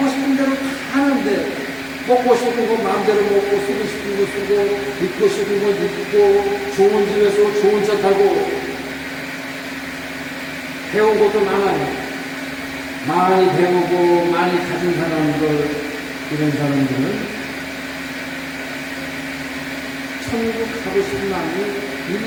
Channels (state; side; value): identical; both; correlation 1.00